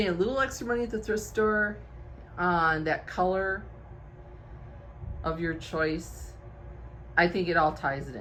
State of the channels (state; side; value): identical; both; correlation 1.00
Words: a little extra money at the thrift store on that color of your choice, I think it all ties it